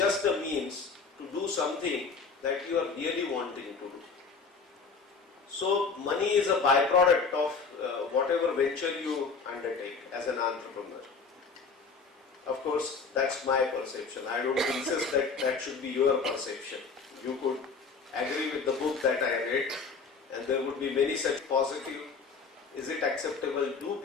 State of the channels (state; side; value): quieter; right; 4.8 dB